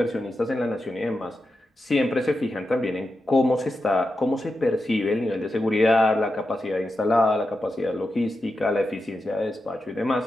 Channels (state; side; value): normal; both; correlation 0.89